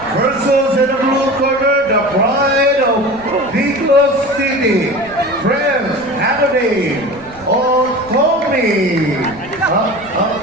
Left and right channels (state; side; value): noise; right; rumble, 23 dB below the sound